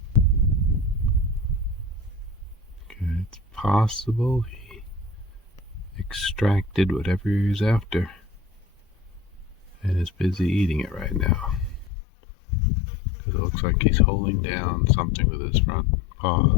Okay, it's possible he extracted whatever he was after and is busy eating it right now. Because it looks like he's holding down something with his front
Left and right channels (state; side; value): drops out; right; at 11.9 s